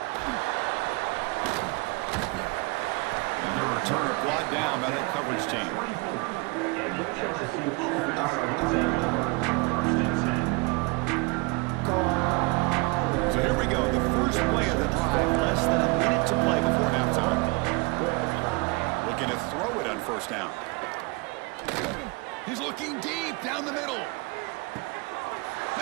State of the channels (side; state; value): left; quieter; 28.1 dB